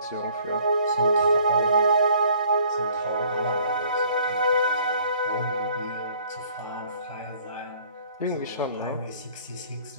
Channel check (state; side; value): inverted; both; correlation -0.57